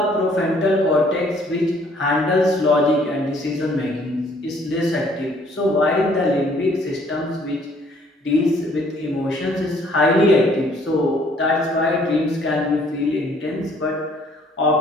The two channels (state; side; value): normal; both; correlation 0.61